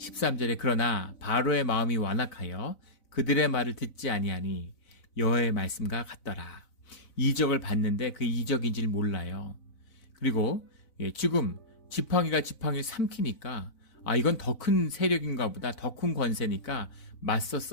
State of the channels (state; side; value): late; right; 4.0 ms